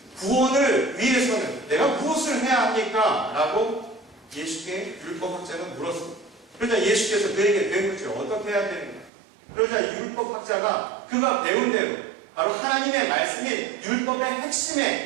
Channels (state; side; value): drops out; left; at 9.1 s